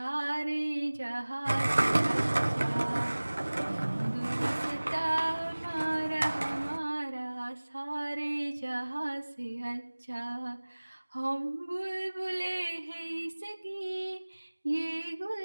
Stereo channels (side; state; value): both; inverted; correlation -1.00